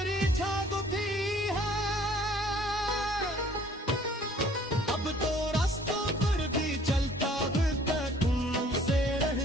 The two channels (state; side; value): normal; both; correlation 0.56